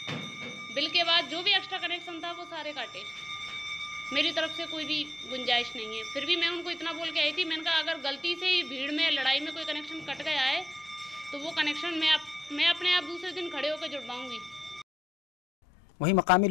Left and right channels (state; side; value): normal; both; correlation 0.85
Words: बिल के बाद जो भी एक्स्ट्रा कनेक्शन था वो सारे काटे। मेरी तरफ से कोई भी गुंजाइश नहीं है। फिर भी मैं उनको इतना बोल के आई थी, मैंने कहा अगर गलती से ही भीड़ में लड़ाई में कोई कनेक्शन कट गया है तो वो कनेक्शन मैं अपने आप दूसरे दिन खड़े होकर जुड़वाऊंगी। वहीं मकामी